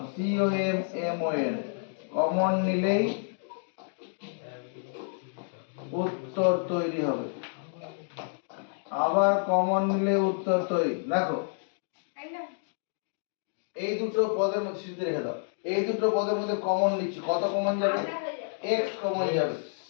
COMMON কমন নিলেই উত্তর তৈরি হবে। আবার কমন নিলে উত্তর তৈরি। দেখো এই দুটো পদের মধ্যে সিদ্ধি রেখে দাও। এই দুটো পদের মধ্যে কমন নিচ্ছি, কত কমন যাবে? x কমন যাবে।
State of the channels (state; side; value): silent; right; digital silence